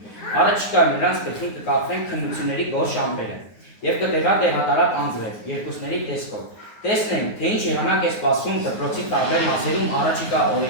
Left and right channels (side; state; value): right; late; 9.6 ms